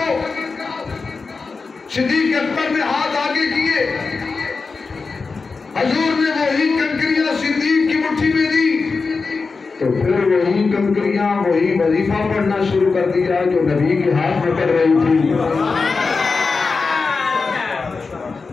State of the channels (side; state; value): right; quieter; 4.4 dB